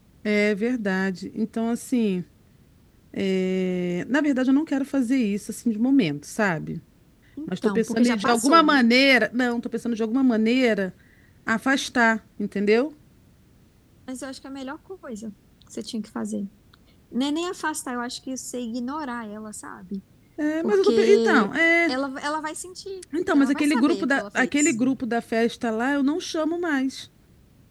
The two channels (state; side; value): identical; both; correlation 1.00